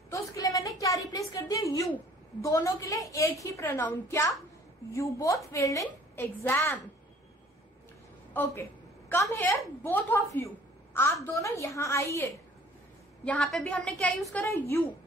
तो उसके लिए मैंने क्या रिप्लेस कर दिया, यू। दोनों के लिए एक ही प्रोनाउन, क्या, you both failed in exam. Okay, come here both of you, आप दोनों यहां आइए। यहां पे भी हमने क्या यूज करा, यू,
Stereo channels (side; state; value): both; normal; correlation 0.54